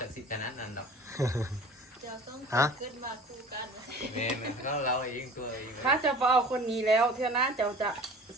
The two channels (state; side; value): normal; both; correlation 0.43